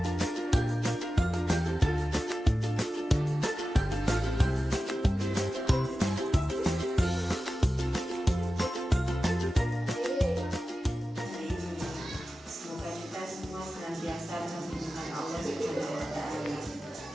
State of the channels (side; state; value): both; normal; correlation 0.93